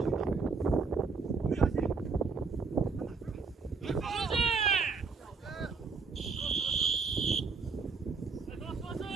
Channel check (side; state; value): left; quieter; 4.8 dB